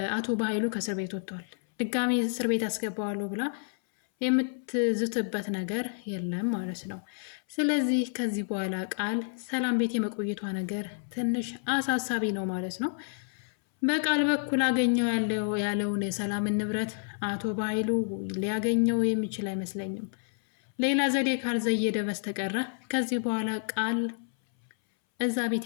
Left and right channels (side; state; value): right; silent; 58 dB below the other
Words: አቶ በኃይሉ ከእስር ቤት ወጥቷል። ድጋሚ እስር ቤት ያስገባዋለሁ ብላ የምትዝትበት ነገር የለም ማለት ነው። ስለዚህ ከዚህ በኋላ ቃል ሰላም ቤት የመቆየቷ ነገር ትንሽ አሳሳቢ ነው ማለት ነው። በቃል በኩል አገኘው ያለውን የሰላምን ንብረት አቶ በኃይሉ ሊያገኘው የሚችል አይመስለኝም። ሌላ ዘዴ ካልዘየደ በስተቀረ ከዚህ በኋላ ቃል እዛ ቤት